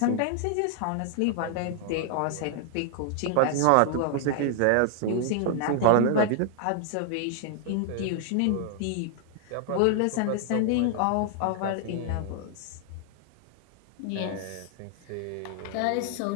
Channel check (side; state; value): both; different; correlation 0.00